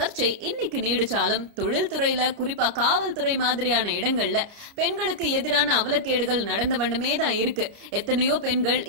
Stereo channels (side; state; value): left; late; 30 ms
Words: இன்னைக்கு நீடிச்சாலும் தொழில்துறையில குறிப்பா காவல்துறை மாதிரியான இடங்கள்ல பெண்களுக்கு எதிரான அவலக்கேடுகள் நடந்த வண்ணமே தான் இருக்கு. எத்தனையோ பெண்கள்